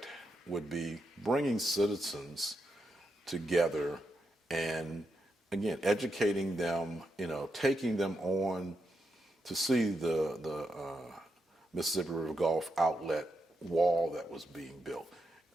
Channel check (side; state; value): both; normal; correlation 0.84